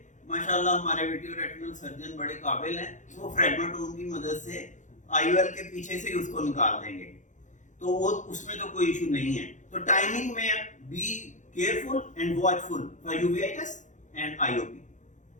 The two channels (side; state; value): right; late; 0.36 ms